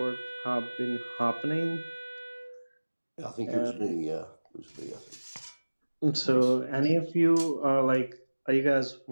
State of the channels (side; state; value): both; inverted; correlation -1.00